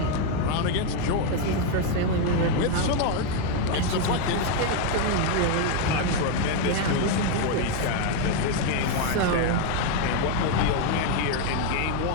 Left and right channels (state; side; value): different; both; correlation 0.01